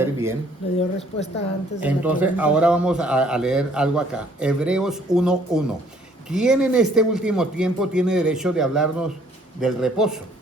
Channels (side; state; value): both; normal; correlation 0.61